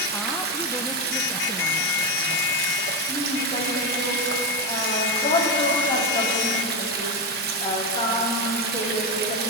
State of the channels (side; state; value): both; normal; correlation 0.10